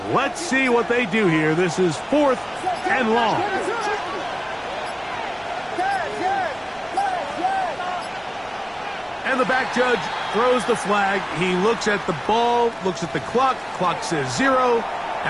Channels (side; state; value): both; identical; correlation 1.00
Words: Let's see what they do here. This is 4th and long. And the back judge throws the flag. He looks at the ball, looks at the clock. Clock says 0.